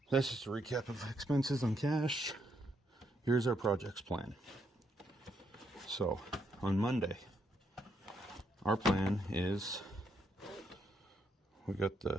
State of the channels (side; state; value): both; normal; correlation 0.76